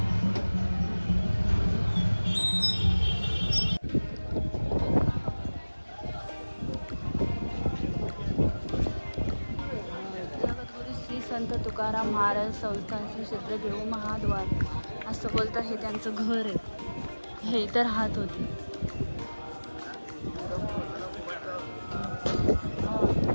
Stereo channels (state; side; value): inverted; both; correlation -1.00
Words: संत तुकाराम महाराज संस्थान श्री क्षेत्र देऊ महाद्वार असं बोलतात. हे त्यांचं घर आहे. हे इथं राहत होते.